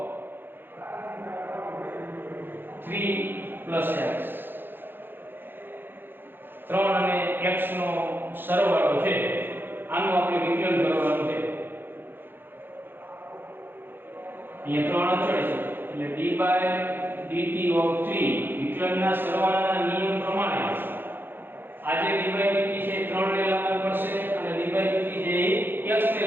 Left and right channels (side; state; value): left; late; 0.099 ms